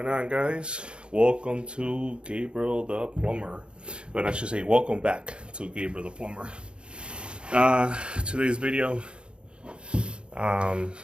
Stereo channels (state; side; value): late; left; 0.055 ms